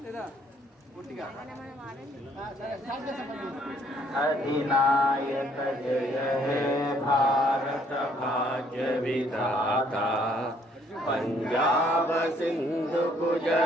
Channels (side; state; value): both; normal; correlation 0.65